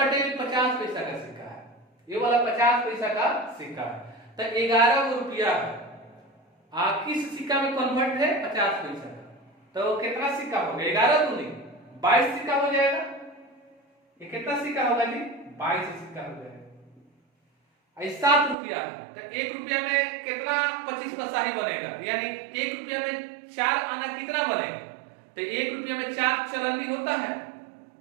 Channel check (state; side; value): drops out; left; at 18.6 s